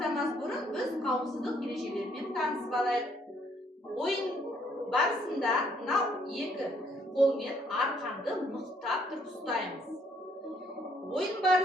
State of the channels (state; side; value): normal; both; correlation 0.67